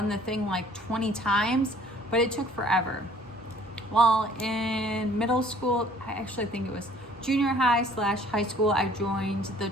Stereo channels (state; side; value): normal; both; correlation 0.55